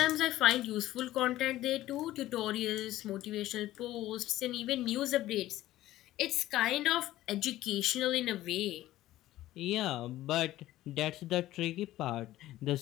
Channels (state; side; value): quieter; right; 15.1 dB